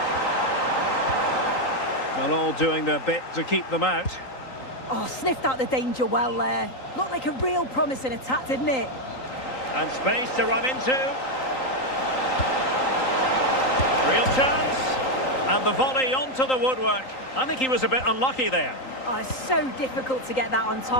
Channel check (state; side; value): late; right; 3.8 ms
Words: Well, all doing their bit to keep them out. Oh, sniffed out the danger well there. Looked like a real promising attack, didn't it? And space to run into. Real chance. And the volley onto the woodwork. I think he was a bit unlucky there. Oh, it's so difficult to get that on